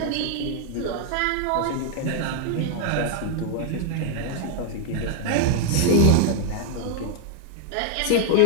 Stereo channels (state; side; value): different; both; correlation 0.00